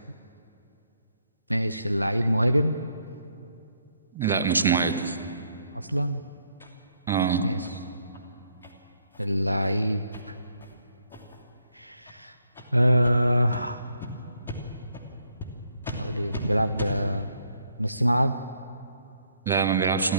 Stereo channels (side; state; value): both; inverted; correlation -0.73